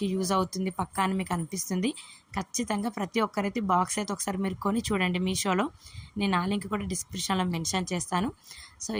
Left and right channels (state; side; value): identical; both; correlation 1.00